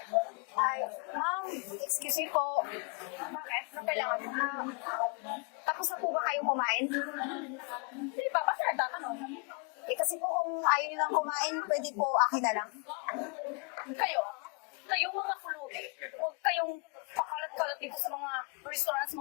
Ay, ma'am, excuse me po. Bakit? Ano kailangan mo? Tapos na po ba kayong kumain? Hindi pa, ba't nagtatanong? Kasi po kung ayaw nilang kumain, pwede po akin na lang. Kayong mga kulubi, huwag kayong pakalat-kalat dito sa mga restaurants,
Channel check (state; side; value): quieter; right; 35.0 dB